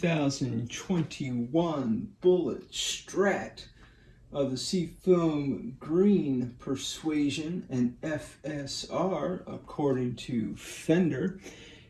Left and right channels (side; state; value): both; identical; correlation 1.00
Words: Bullet Strat of the Seafoam Green Persuasion and FSR, according to Fender.